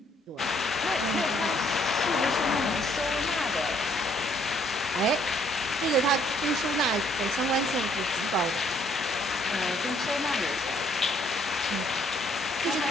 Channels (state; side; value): normal; both; correlation 0.66